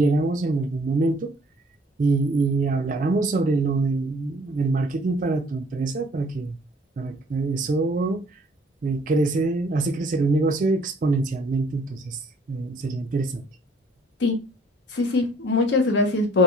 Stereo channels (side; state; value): both; normal; correlation 0.58